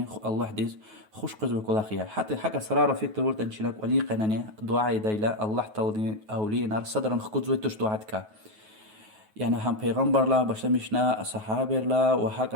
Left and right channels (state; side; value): late; left; 9.3 ms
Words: الله دز خوش قزوي كل أخيا حتى حاجة سرارة في تورت أنشلك ولي قناني دعاء دايلا الله تعالى أولي نار صدرا خد زوي تش دعاتك يعني هم پیغمبر لا بشمشنا صحابه لا